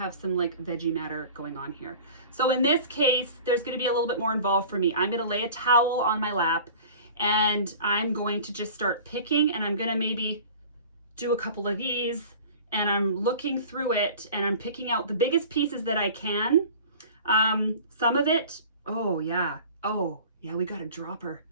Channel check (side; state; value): both; inverted; correlation -0.42